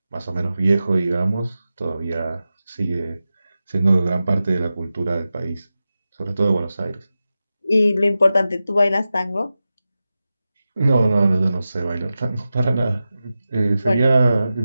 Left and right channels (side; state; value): both; inverted; correlation -0.93